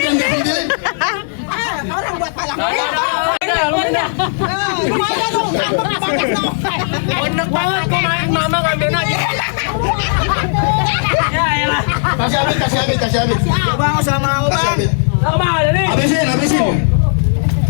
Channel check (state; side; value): silent; right; digital silence